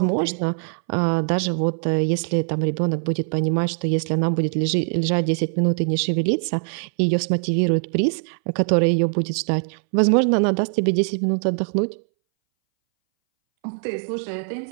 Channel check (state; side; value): silent; left; 62 dB below the other